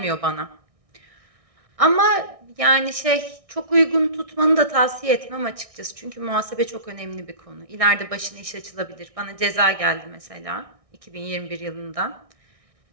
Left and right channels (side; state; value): left; late; 1.6 ms